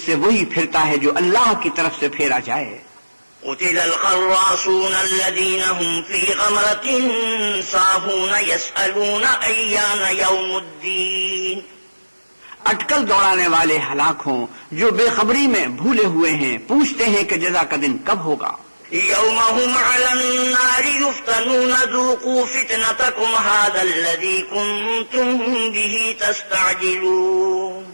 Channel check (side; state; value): both; inverted; correlation -1.00